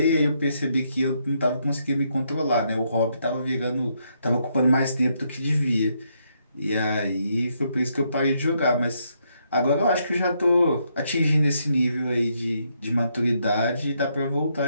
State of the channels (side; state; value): both; inverted; correlation -0.76